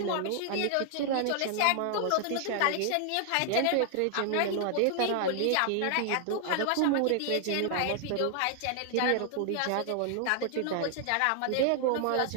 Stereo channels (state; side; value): different; both; correlation 0.00